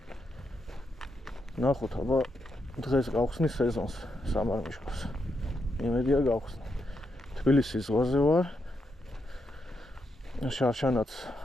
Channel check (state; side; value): normal; both; correlation 0.82